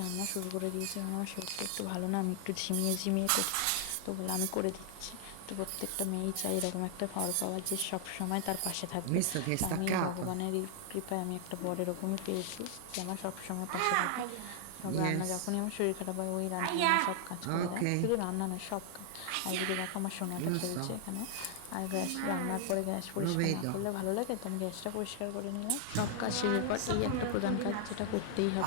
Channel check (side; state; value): both; different; correlation 0.00